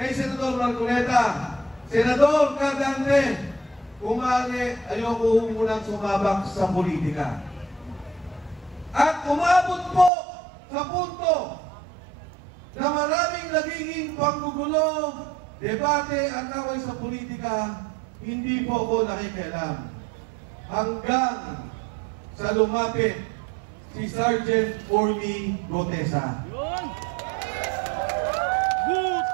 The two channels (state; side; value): drops out; left; at 10.1 s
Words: Senador Marcoleta, Senador Cardante, kumali, ayoko munang sumabak sa politika. At umabot po sa punto na maraming nagiging panggugulo, debate at away sa politika, hindi po ako nakikialam. Hanggang sa lumapit si Sergeant Orly Gutesa.